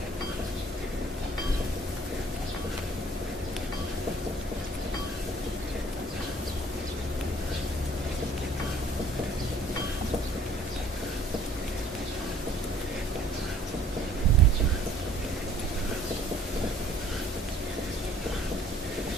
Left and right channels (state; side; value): normal; both; correlation 0.55